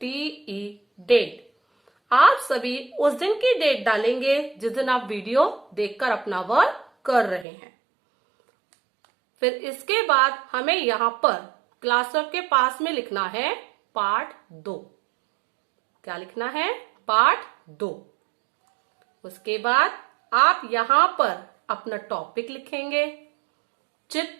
डेट. आप सभी उस दिन की डेट डालेंगे जिस दिन आप वीडियो देखकर अपना वर्क कर रहे हैं. फिर इसके बाद हमें यहाँ पर क्लास वर्क के पास में लिखना है पार्ट 2. क्या लिखना है? पार्ट 2. उसके बाद आप यहाँ पर अपना टॉपिक लिखेंगे.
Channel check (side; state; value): left; drops out; at 7.5 s